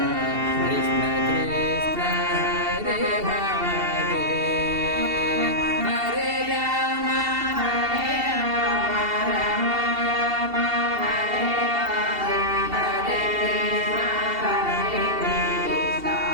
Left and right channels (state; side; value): late; left; 2.7 ms